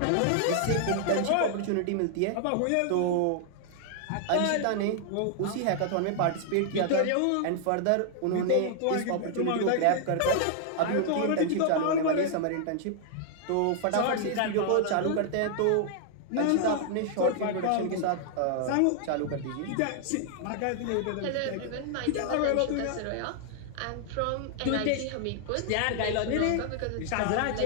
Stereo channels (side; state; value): both; different; correlation 0.00